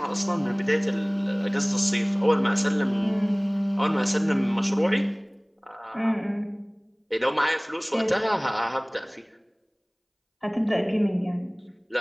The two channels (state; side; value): identical; both; correlation 1.00